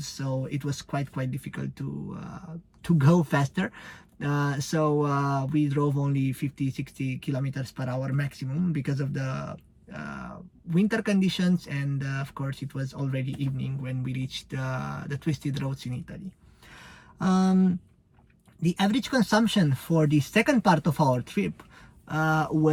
so it was quite difficult to go faster. So we drove only 50-60 kilometers per hour maximum because of the winter conditions, and of course it was already evening when we reached the twisted roads in Italy. The average consumption for the second part of our trip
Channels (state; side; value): identical; both; correlation 1.00